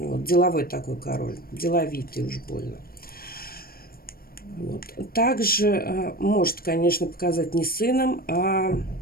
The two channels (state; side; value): late; right; 0.43 ms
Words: деловой такой король, деловитый уж больно. Вот. Также может, конечно, показать не сыном, а